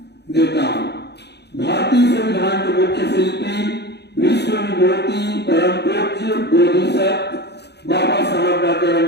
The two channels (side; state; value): right; late; 0.49 ms